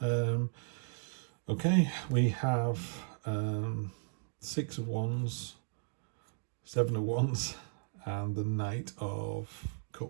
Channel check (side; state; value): left; silent; digital silence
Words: Okay, we have 6 of Wands, 7 of Wands, and the Knight of